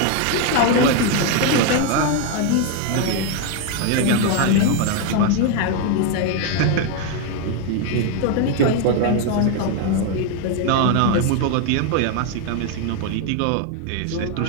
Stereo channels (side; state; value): both; different; correlation 0.01